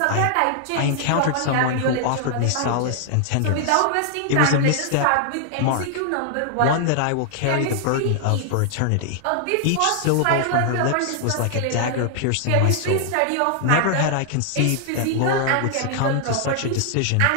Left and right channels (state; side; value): different; both; correlation 0.00